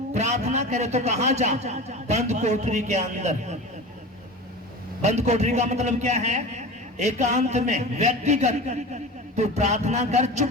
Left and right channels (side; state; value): both; normal; correlation 0.32